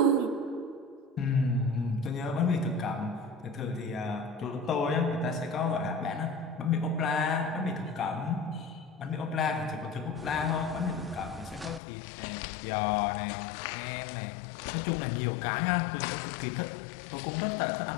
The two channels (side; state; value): right; drops out; at 11.8 s